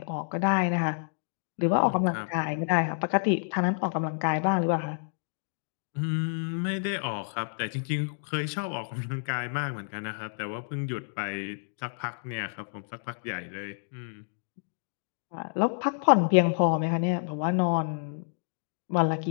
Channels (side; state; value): right; silent; digital silence